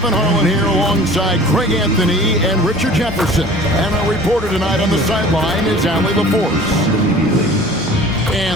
Harlan here alongside Greg Anthony and Richard Jefferson. And our reporter tonight on the sideline is Allie LaForce.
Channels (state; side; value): normal; both; correlation 0.45